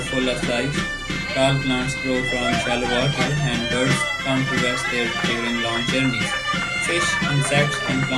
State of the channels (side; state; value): both; identical; correlation 1.00